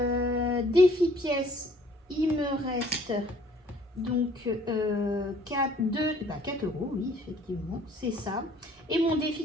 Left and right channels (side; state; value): both; normal; correlation 0.57